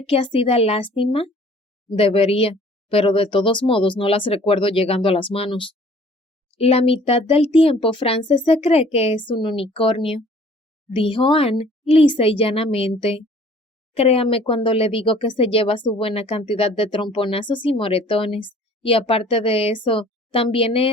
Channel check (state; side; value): normal; both; correlation 0.52